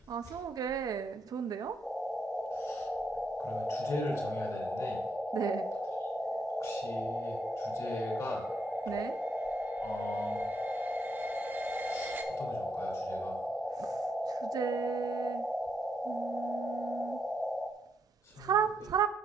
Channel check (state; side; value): normal; both; correlation 0.78